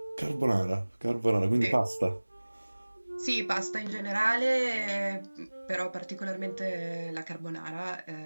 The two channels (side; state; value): both; inverted; correlation -1.00